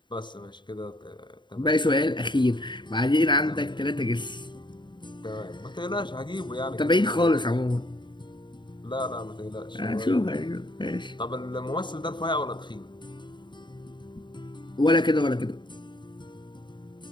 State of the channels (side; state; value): right; late; 0.22 ms